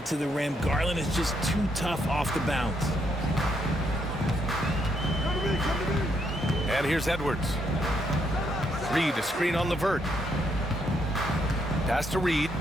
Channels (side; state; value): both; normal; correlation 0.75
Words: to the rim, Garland is just too tough off the bounce. And here's Edwards. Reed, a screen on LeVert. Pass to Reed,